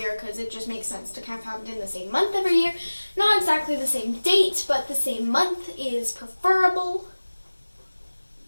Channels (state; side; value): inverted; both; correlation -1.00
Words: because it just makes sense to kind of have it in the same month every year. Not exactly the same date, but the same month is preferable.